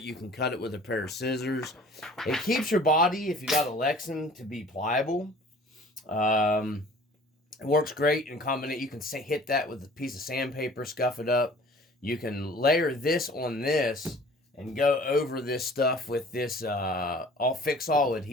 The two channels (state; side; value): normal; both; correlation 0.49